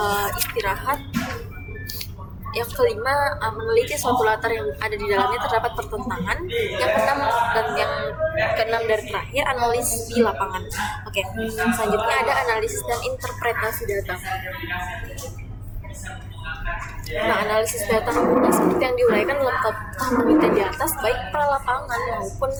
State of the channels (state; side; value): identical; both; correlation 1.00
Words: istirahat. Yang kelima meneliti suatu latar yang ada di dalamnya terdapat pertentangan. Yang keenam dari terakhir analisis di lapangan. Oke, selanjutnya ada analisis dan interpretasi data. Nah, analisis data seperti yang diuraikan dalam tahap penelitian di atas, baik pra-lapangan maupun